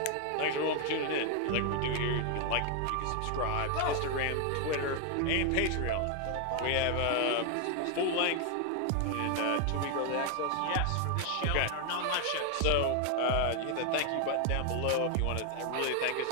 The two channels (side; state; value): both; different; correlation 0.00